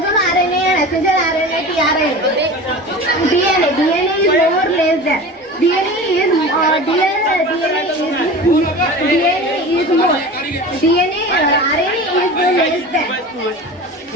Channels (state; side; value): normal; both; correlation 0.34